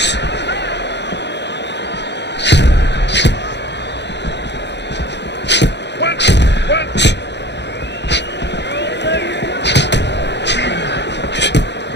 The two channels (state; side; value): late; right; 0.50 ms